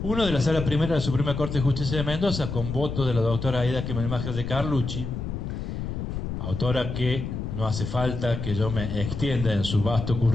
Uno de la Sala Primera de la Suprema Corte de Justicia de Mendoza, con voto de la doctora Aida Kemelmacher de Carlucci, autora que no hace falta que yo me extienda en su vasto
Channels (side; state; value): left; noise; rumble, 5 dB below the sound